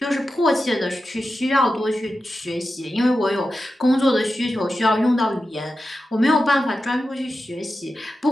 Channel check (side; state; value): both; normal; correlation 0.91